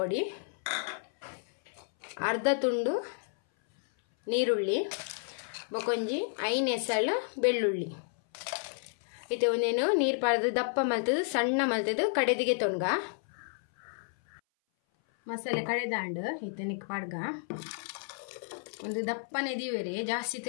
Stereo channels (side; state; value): right; silent; 57 dB below the other